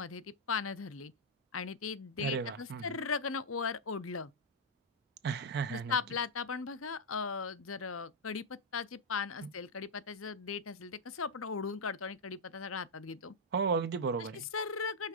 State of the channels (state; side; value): normal; both; correlation -0.03